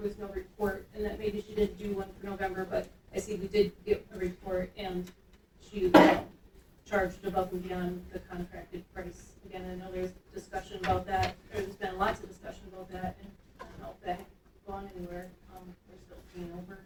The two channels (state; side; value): identical; both; correlation 1.00